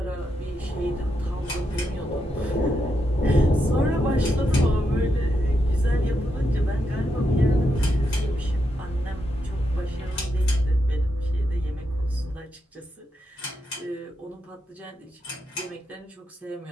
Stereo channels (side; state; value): both; normal; correlation 0.83